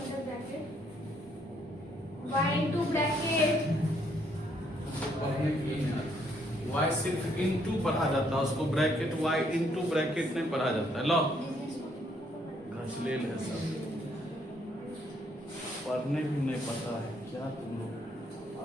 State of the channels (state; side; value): normal; both; correlation 0.69